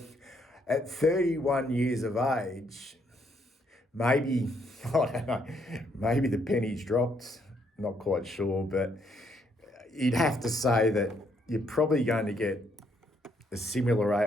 at 31 years of age, maybe, I don't know, maybe the penny's dropped, not quite sure, but you'd have to say that you're probably going to get a similar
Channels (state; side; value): normal; both; correlation 0.72